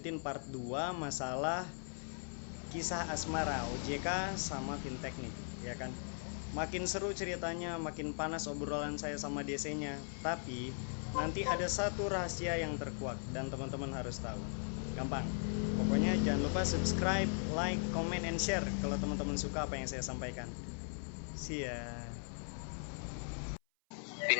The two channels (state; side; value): silent; right; 52 dB below the other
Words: part 2 masalah kisah asmara OJK sama fintech nih, ya kan? Makin seru ceritanya, makin panas obrolan saya sama DC-nya. Tapi nanti ada satu rahasia yang terkuak dan teman-teman harus tahu. Gampang. Pokoknya jangan lupa subscribe, like, comment, and share kalau teman-teman suka apa yang saya sampaikan. See ya.